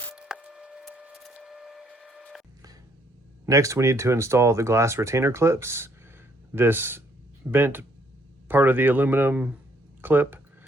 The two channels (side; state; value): both; normal; correlation 0.67